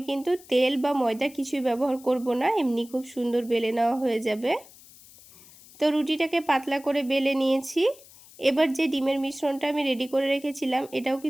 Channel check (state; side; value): noise; left; hiss, 22 dB below the sound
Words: কিন্তু তেল বা ময়দা কিছুই ব্যবহার করব না, এমনি খুব সুন্দর বেলে নেওয়া হয়ে যাবে। তো রুটিটাকে পাতলা করে বেলে নিয়েছি। এবার যে ডিমের মিশ্রণটা আমি রেডি করে রেখেছিলাম এটাও